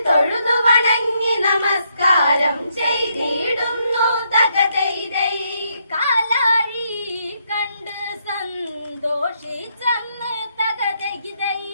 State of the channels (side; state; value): both; inverted; correlation -0.76